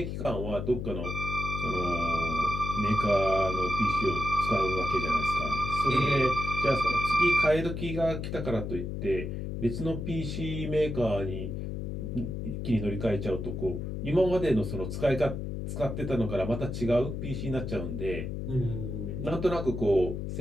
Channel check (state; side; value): noise; left; hum, 4 dB below the sound